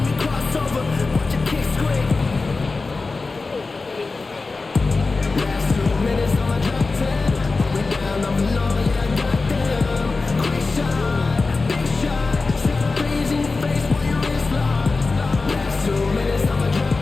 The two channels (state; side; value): quieter; right; 3.8 dB